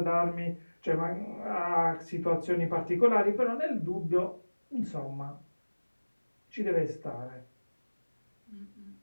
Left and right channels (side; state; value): both; inverted; correlation -1.00